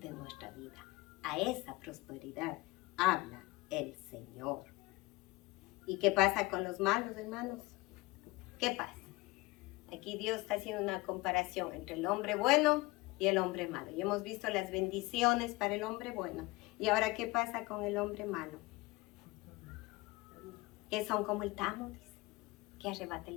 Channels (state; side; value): quieter; right; 22.6 dB